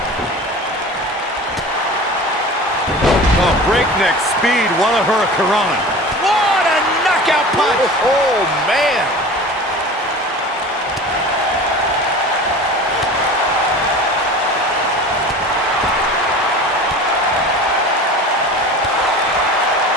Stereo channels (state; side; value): normal; both; correlation 0.37